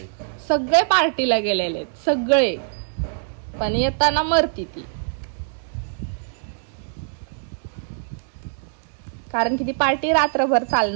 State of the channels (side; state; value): left; silent; digital silence